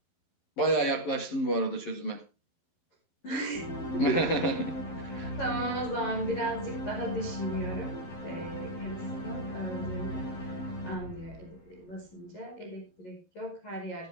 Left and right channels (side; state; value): right; late; 11 ms